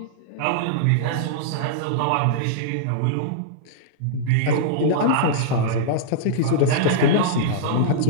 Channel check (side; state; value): both; different; correlation -0.02